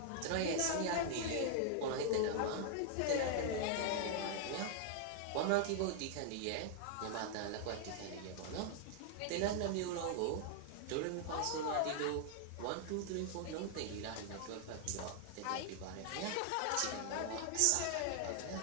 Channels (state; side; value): different; both; correlation 0.00